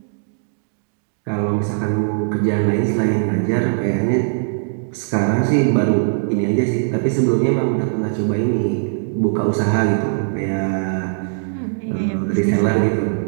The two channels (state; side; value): silent; left; digital silence